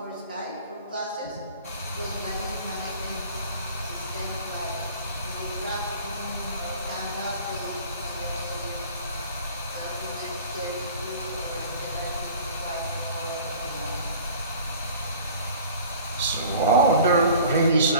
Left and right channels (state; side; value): inverted; both; correlation -0.45